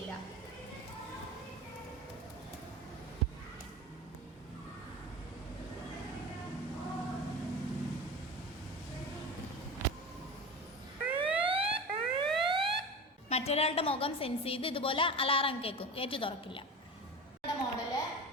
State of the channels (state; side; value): normal; both; correlation 0.30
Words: മറ്റൊരാളുടെ മുഖം സെൻസ് ചെയ്ത് ഇതുപോലെ അലാറം കേൾക്കും, ഗേറ്റ് തുറക്കില്ല. മോഡല്.